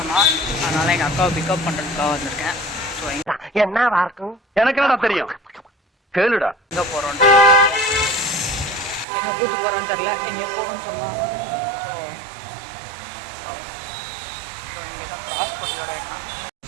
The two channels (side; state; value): left; drops out; at 9.1 s